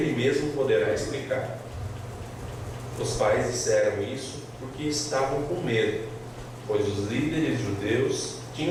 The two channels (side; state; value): both; identical; correlation 1.00